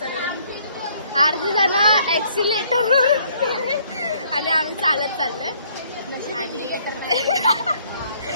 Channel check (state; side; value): inverted; both; correlation -0.65